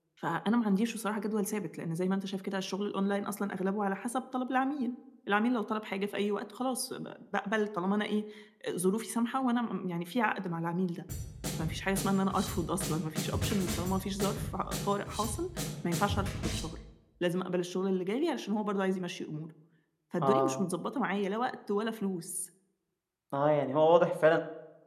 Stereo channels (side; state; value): both; identical; correlation 1.00